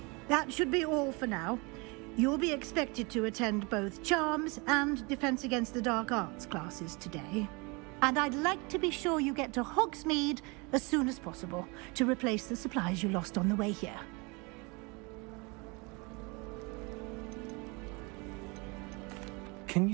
That should be all for now. You'll be expected to attend both Charms and Defense Against the Dark Arts classes today. And I'd like to be sure you get to Hogsmeade as soon as possible to replace the supplies you lost on the way here. Can you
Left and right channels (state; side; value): quieter; left; 28.5 dB